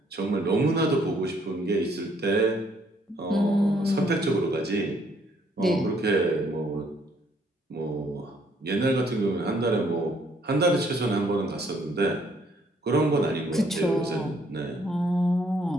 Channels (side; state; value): both; normal; correlation 0.66